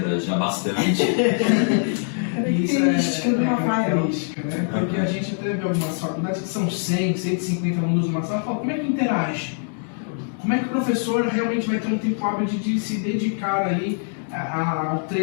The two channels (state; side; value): silent; right; 59 dB below the other